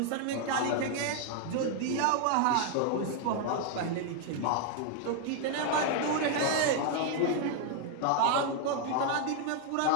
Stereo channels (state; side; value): different; both; correlation 0.00